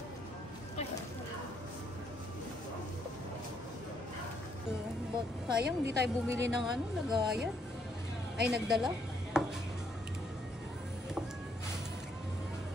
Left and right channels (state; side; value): normal; both; correlation 0.72